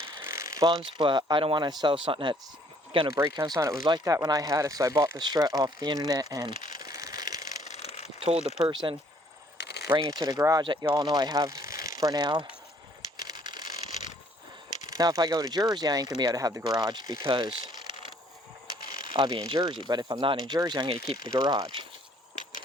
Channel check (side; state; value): both; normal; correlation 0.61